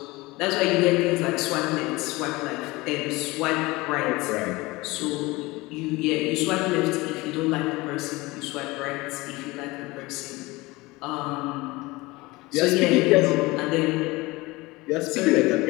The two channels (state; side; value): quieter; right; 21.9 dB